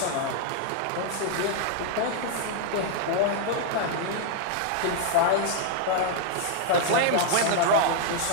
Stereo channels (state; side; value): different; both; correlation 0.00